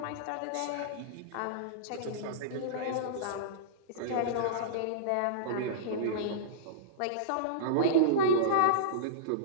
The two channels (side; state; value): both; different; correlation -0.04